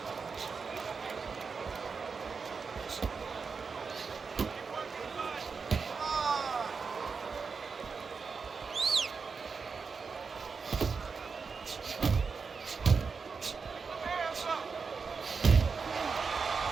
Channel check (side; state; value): left; quieter; 5.2 dB